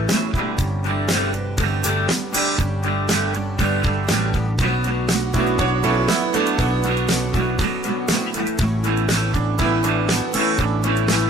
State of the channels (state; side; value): normal; both; correlation 0.64